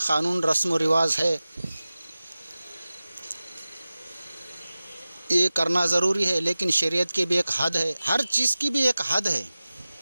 قانون رسم و رواج ہے، یہ کرنا ضروری ہے، لیکن شریعت کی بھی ایک حد ہے، ہر چیز کی بھی ایک حد ہے۔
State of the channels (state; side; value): inverted; both; correlation -0.97